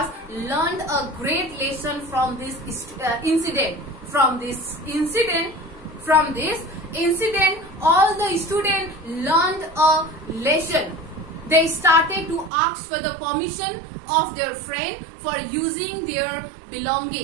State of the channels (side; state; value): left; drops out; at 12.5 s